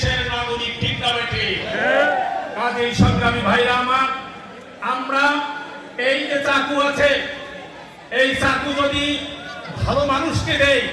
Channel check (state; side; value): identical; both; correlation 1.00